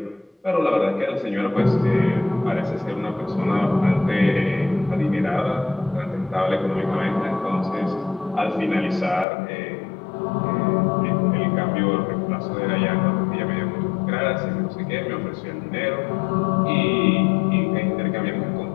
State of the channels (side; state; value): right; drops out; at 9.2 s